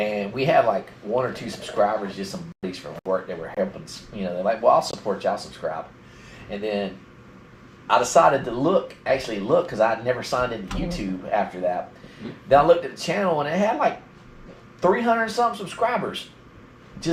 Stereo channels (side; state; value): both; identical; correlation 1.00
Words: we had like 1 or 2 subscribers, just some buddies from work that were helping. You know, they're like, "Well, I'll support y'all, subscribe." And then I decided to actually look, because I never signed into YouTube after that. Then I looked at the channel and it had like 300 something subscribers.